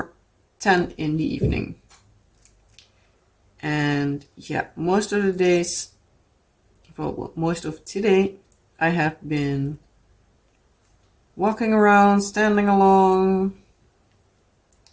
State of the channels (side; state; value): both; identical; correlation 1.00